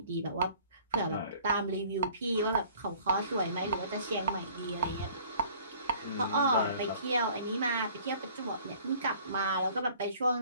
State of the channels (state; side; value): inverted; both; correlation -0.52